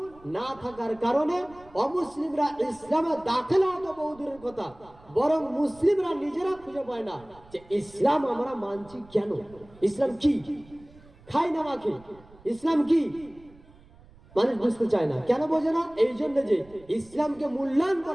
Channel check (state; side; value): noise; right; rumble, 25 dB below the sound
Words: না থাকার কারণে অমুসলিমরা ইসলামে দাখিল হওয়া তো বহু দূরের কথা, বরং মুসলিমরা নিজেরা খুঁজে পায় না যে ইসলাম আমরা মানছি কেন, ইসলাম কি, খাই না মাখি, ইসলাম কি মানুষ বুঝতে চায় না। কেন বোঝে না? এই জন্য যে ইসলামকে মূল্যায়ন